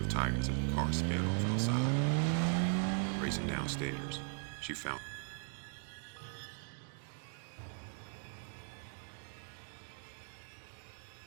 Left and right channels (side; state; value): left; silent; 52 dB below the other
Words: tires as the car sped off outside. Racing downstairs, she found her husband on the floor in front of the open door, gasping for breath, blood pouring from a gaping wound in